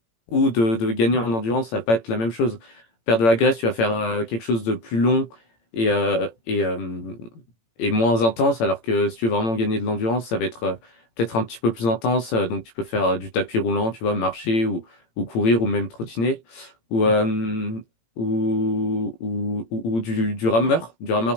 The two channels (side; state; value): right; late; 18 ms